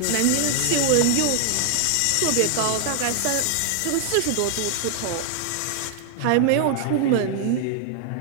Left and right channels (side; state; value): both; different; correlation 0.00